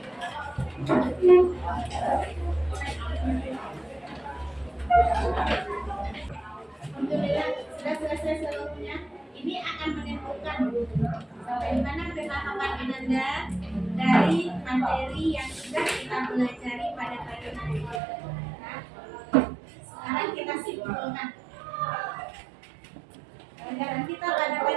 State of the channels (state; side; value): drops out; left; at 18.0 s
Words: Alhamdulillah sudah selesai seluruhnya. Ini akan menentukan sampai di mana pemahaman Ananda dari materi yang sudah kita pelajari pada pagi hari ini. Nah, sekarang kita simpulkan. Pelajaran kita pada